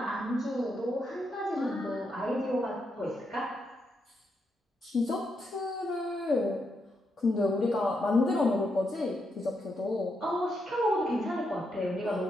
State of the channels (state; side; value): normal; both; correlation 0.81